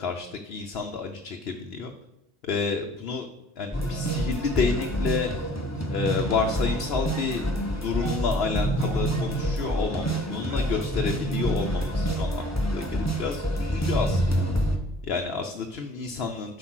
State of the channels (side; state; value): both; normal; correlation 0.52